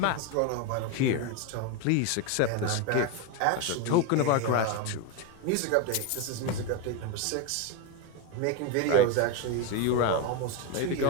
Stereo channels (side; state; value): both; different; correlation 0.02